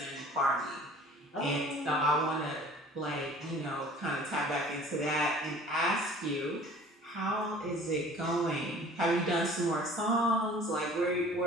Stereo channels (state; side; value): normal; both; correlation 0.48